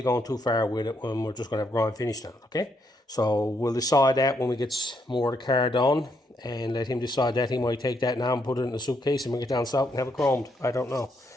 too far with it when we're just going to have grind finish on it, okay? So we'll decide that when we get more of the car done. And let him decide that. He might take that now and put it in the suitcase and bring it down south and have it chromed. I don't know.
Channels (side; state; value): both; normal; correlation 0.76